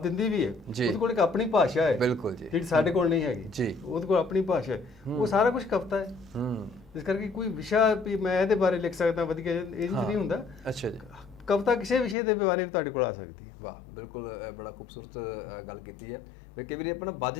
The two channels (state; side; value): drops out; right; at 12.2 s